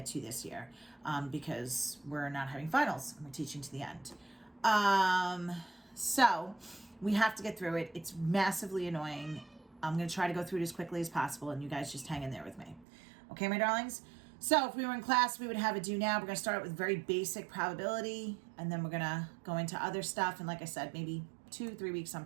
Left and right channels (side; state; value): left; drops out; at 12.9 s